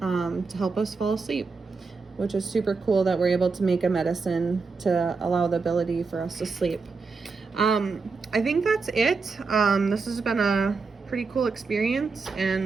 to help us fall asleep, which is super cool that we're able to make a medicine to allow the ability for us to sleep. I think that's it. This has been a pretty cool experience,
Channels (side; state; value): left; quieter; 4.5 dB